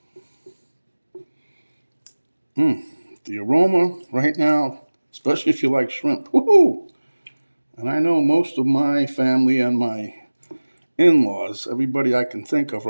The aroma right now, especially if you like shrimp. Woohoo! And I know most of my family and my in-laws, everybody I can think of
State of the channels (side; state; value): both; inverted; correlation -1.00